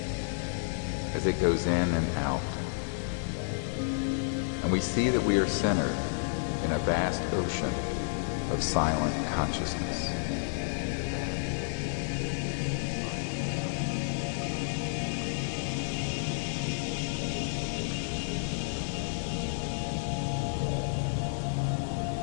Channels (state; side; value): silent; right; digital silence